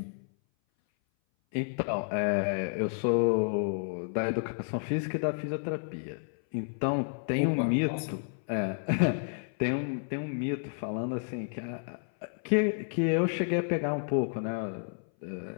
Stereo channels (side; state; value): right; silent; 57 dB below the other